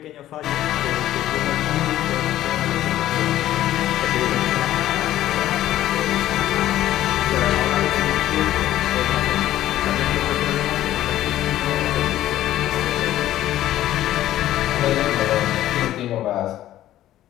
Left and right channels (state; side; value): quieter; right; 13.4 dB